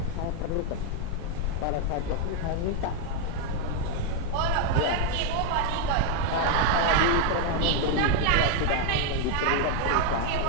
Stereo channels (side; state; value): both; different; correlation 0.01